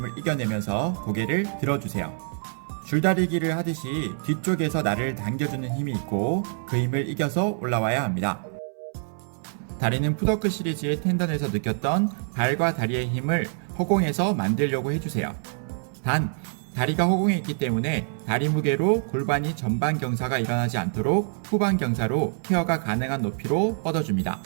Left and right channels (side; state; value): left; silent; 61 dB below the other